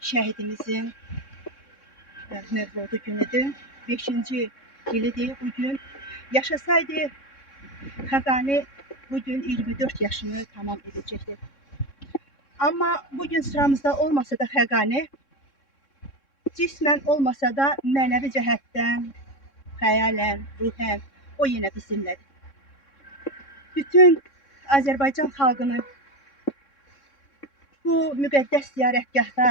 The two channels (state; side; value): late; right; 3.6 ms